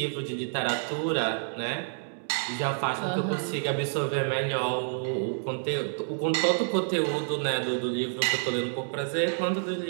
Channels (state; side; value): silent; left; digital silence